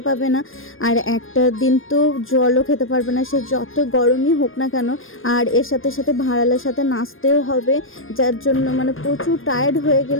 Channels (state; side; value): late; right; 0.59 ms